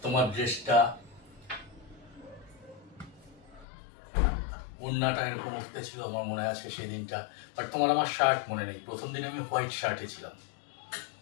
তোমার ড্রেসটা, ওড়নাটা এরকম উঠতে ছিল, আমার মনে আছে সেদিনটা। বাট তোমার আমার শার্ট মনে নেই। প্রথম দিন আমি হোয়াইট শার্টে ছিলাম,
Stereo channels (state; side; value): drops out; right; at 3.7 s